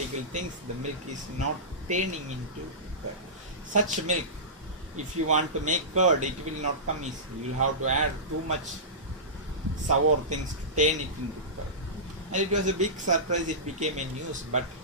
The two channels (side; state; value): both; normal; correlation -0.20